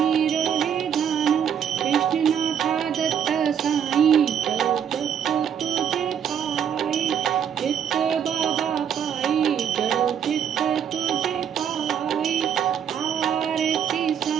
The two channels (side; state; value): left; quieter; 8.5 dB